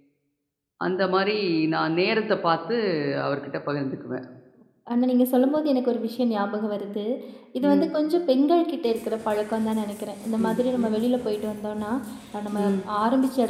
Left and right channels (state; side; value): identical; both; correlation 1.00